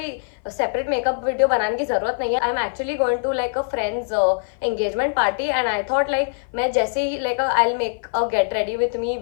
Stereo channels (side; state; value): right; silent; 57 dB below the other